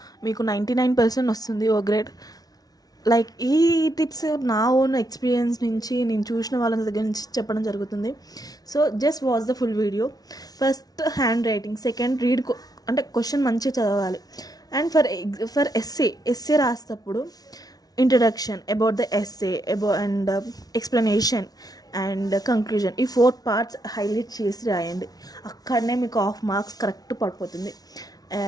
మీకు 99% వస్తుంది ఓ గ్రేడ్. లైక్ ఈ టిప్స్ నా ఓన్ ఎక్స్పీరియన్స్ నుంచి, నేను చూసిన వాళ్ళ దగ్గర నుంచి చెప్పడం జరుగుతుంది. So just watch the full video. First hand writing, second read, అంటే క్వశ్చన్ మంచిగా చదవాలి. అండ్ ఫర్ ఎస్సే రాసేటప్పుడు introduction, about the essay, and explanation and conclusion, ఈ 4 పార్ట్స్ హైలైట్ చేసి రాయండి. అక్కడనే మీకు హాఫ్ మార్క్స్ కరెక్ట్ పడిపోతుంది.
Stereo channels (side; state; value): right; late; 0.19 ms